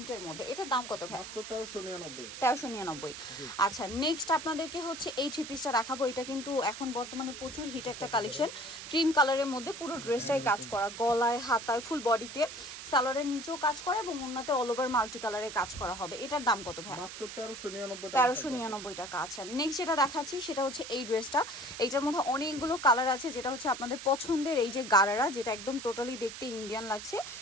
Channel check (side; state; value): right; noise; hiss, 10 dB below the sound